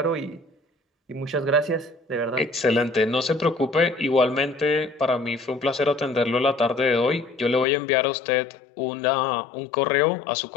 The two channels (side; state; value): right; drops out; at 7.7 s